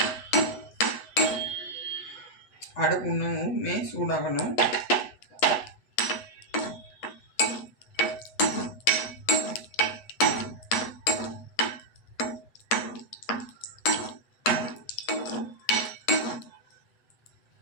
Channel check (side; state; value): right; late; 8.4 ms